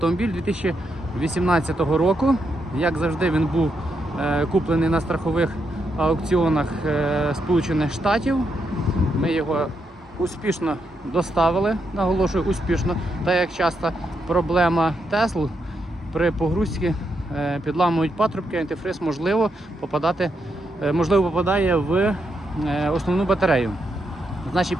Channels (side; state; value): both; normal; correlation 0.81